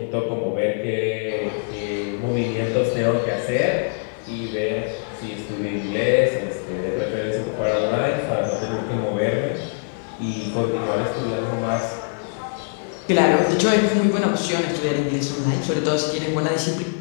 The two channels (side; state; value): right; silent; 59 dB below the other